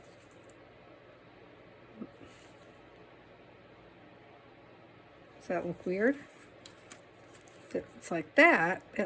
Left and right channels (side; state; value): both; identical; correlation 1.00